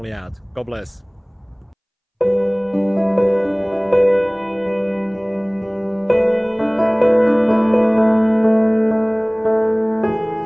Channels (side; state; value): both; identical; correlation 1.00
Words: out. God bless.